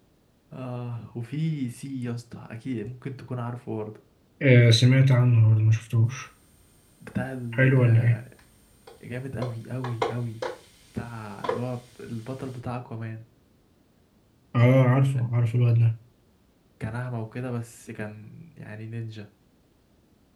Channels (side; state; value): both; identical; correlation 1.00